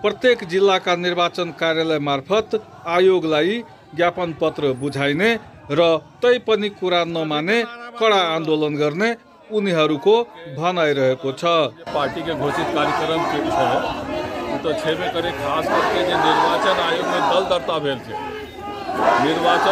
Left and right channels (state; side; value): identical; both; correlation 1.00